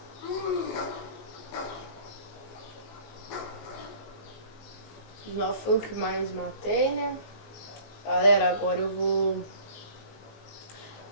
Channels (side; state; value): right; late; 19 ms